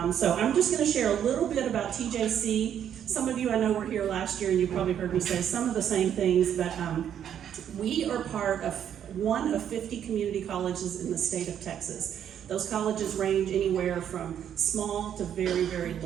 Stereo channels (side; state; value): left; quieter; 9.4 dB